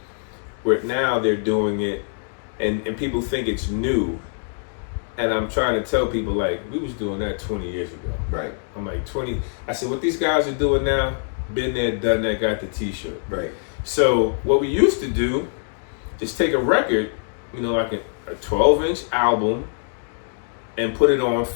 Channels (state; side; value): silent; right; 63 dB below the other